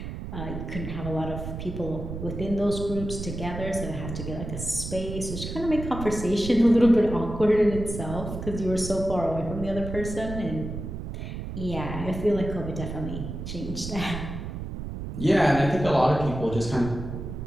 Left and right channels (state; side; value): noise; right; rumble, 7 dB below the sound